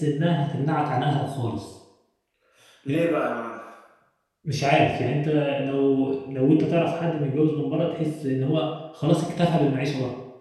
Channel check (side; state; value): both; identical; correlation 1.00